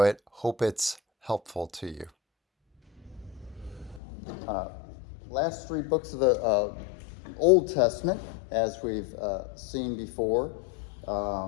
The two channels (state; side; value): drops out; right; at 4.0 s